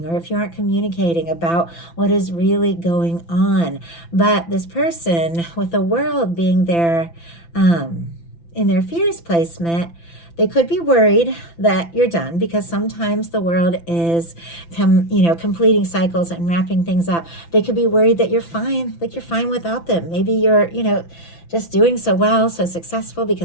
or if you aren't communicating about what is really going on. But this person with the world being there in their fears placement, they could be worried that you're done, because sometimes the world is completing cycles and wrapping things up. They could be worried that you're fine, like you're fine without them. Maybe you're just doing so well, so successful,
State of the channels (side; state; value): right; late; 5.9 ms